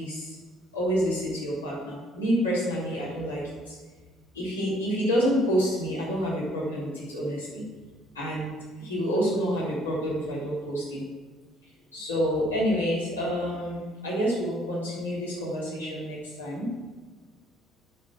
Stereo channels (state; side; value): normal; both; correlation 0.63